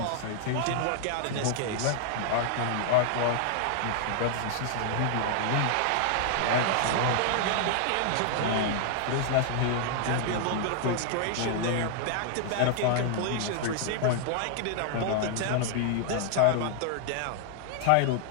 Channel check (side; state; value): both; different; correlation 0.00